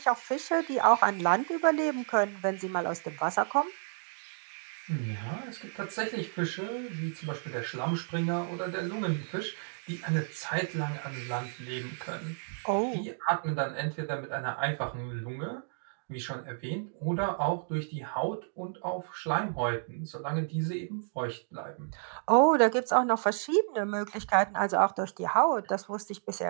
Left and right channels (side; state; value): left; silent; digital silence